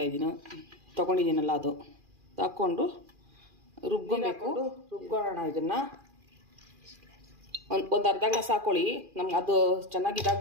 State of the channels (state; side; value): late; left; 2.4 ms